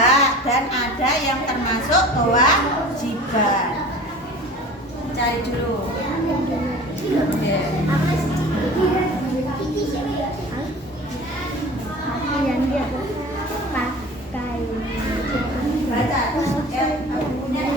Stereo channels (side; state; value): both; normal; correlation 0.40